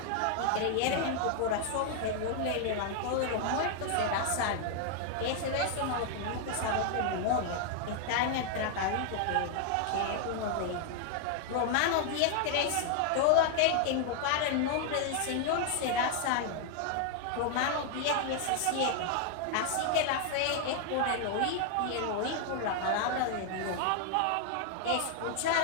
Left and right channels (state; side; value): different; both; correlation 0.00